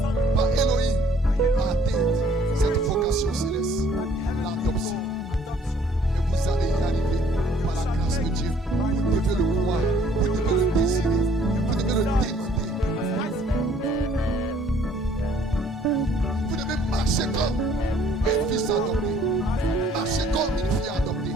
par Elohim à atteindre cette vocation céleste, l'adoption. Et vous allez y arriver par la grâce de Dieu. Vous devez le croire, vous devez le désirer, vous devez le demander. Vous devez marcher comme un fils adopté, marcher comme une fille adoptée,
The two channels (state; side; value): normal; both; correlation 0.60